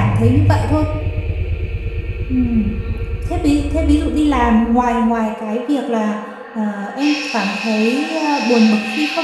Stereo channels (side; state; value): both; identical; correlation 1.00